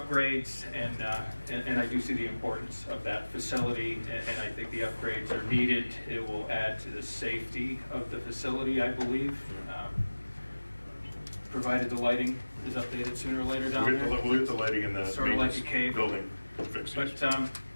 and I do see the importance of that facility and I think the upgrades are needed. It will add to the safety of the facility, I believe. Provided the lighting is updated sooner or later down there. We'll get the lighting in the sort of like a cave building fixed. But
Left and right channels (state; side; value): inverted; both; correlation -1.00